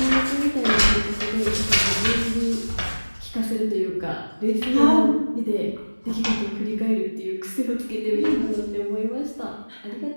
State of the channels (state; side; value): inverted; both; correlation -1.00